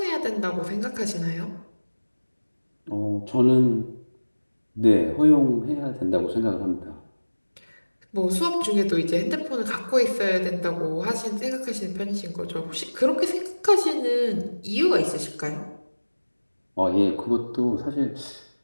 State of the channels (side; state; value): both; inverted; correlation -1.00